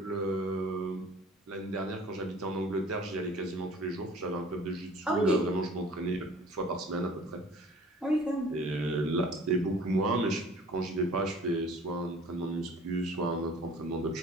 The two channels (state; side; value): normal; both; correlation 0.49